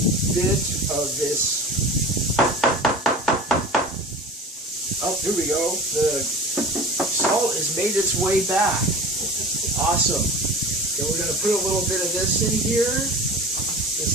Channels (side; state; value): both; normal; correlation 0.36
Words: bit of this. Oh, here we go. The salt has made its way back. Awesome. Then we're going to put a little bit of this in here